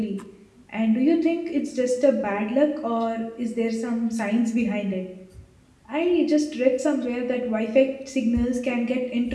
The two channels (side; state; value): both; identical; correlation 1.00